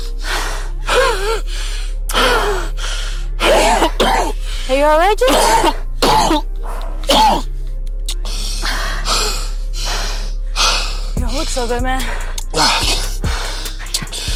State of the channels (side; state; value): both; identical; correlation 1.00